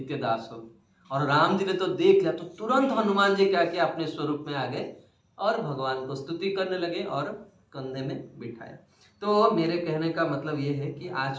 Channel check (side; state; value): both; identical; correlation 1.00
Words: दास हो। और राम जी ने तो देख लिया, तो तुरंत हनुमान जी क्या किया, अपने स्वरूप में आ गए और भगवान को स्तुति करने लगे और कंधे में बिठाया। तो मेरे कहने का मतलब ये है कि